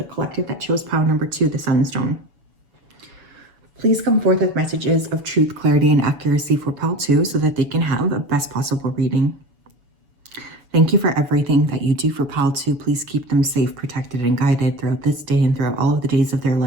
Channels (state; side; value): late; left; 7.0 ms